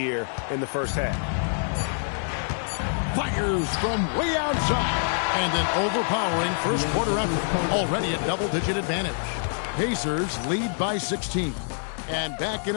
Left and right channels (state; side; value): silent; right; digital silence